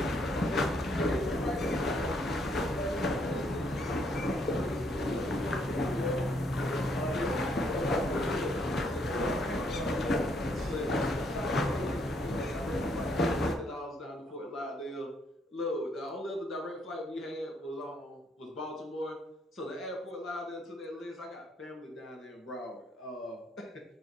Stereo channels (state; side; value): normal; both; correlation 0.70